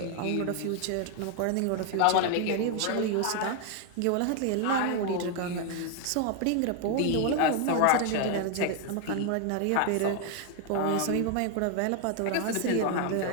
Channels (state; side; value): different; both; correlation 0.00